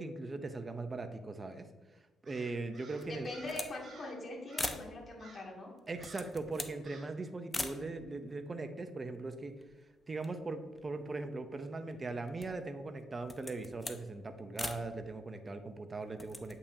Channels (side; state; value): both; normal; correlation 0.86